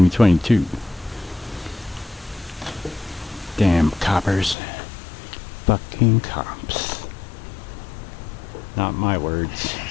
Damn coppers. Fucking cops. Not my words.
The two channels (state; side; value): drops out; right; at 4.5 s